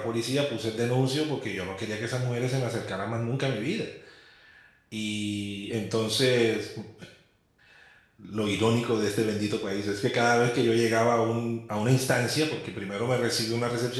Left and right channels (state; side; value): identical; both; correlation 1.00